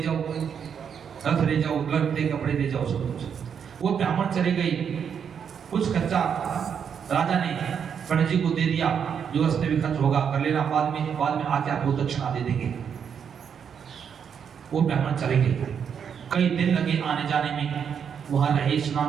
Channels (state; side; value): quieter; left; 7.5 dB